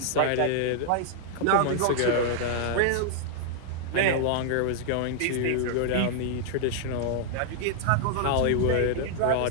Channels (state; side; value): different; both; correlation -0.01